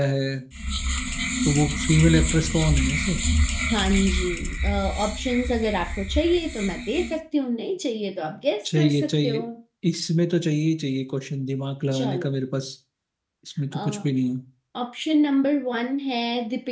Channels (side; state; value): both; identical; correlation 1.00